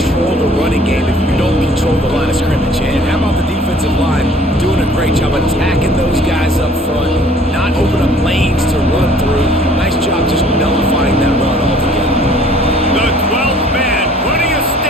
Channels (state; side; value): normal; both; correlation 0.55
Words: the running game if you don't control the line of scrimmage. And how about the defensive line doing a great job attacking those guys up front, not open up lanes to run through. Nice job just nullifying that run altogether. The 12th man putting a